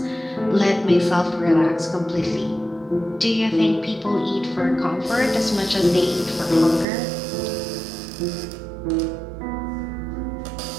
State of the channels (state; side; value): drops out; left; at 6.9 s